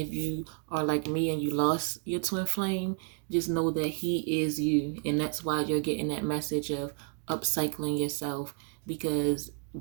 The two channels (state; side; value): quieter; left; 38.5 dB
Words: you are like me and you lost your twin flame, just know that he is you. And that's why you're getting that message of upcycling yourself. Because